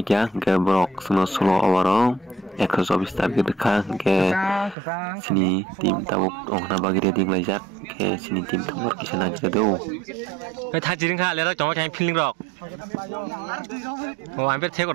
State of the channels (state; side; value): drops out; left; at 4.8 s